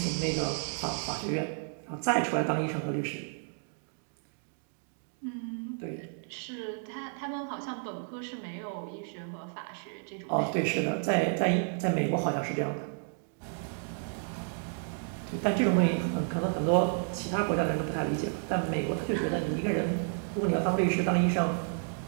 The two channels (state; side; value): silent; left; 57 dB below the other